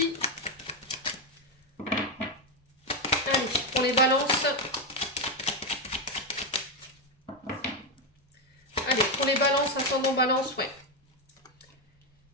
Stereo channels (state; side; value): normal; both; correlation 0.07